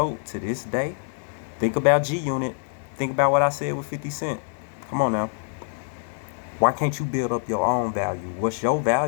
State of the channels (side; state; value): right; silent; digital silence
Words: to this day? Think about G-Unit. Think about what I said with 50 Cent. Come on now. Why can't you build up your own value? What's your